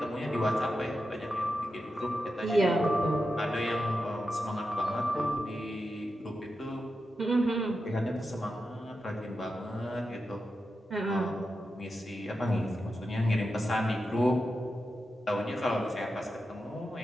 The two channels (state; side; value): normal; both; correlation 0.89